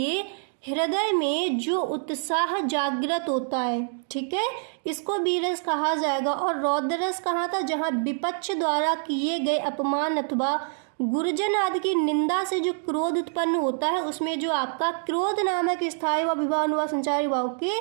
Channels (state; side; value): silent; left; digital silence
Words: हृदय में जो उत्साह जागृत होता है, ठीक है, इसको वीरस कहा जाएगा। और रौद्ररस कहाँ था, जहाँ विपक्ष द्वारा किए गए अपमान अथवा गुरुजन आदि की निंदा से जो क्रोध उत्पन्न होता है, उसमें जो आपका क्रोध नामक स्थायी व विभाव व संचारी भाव के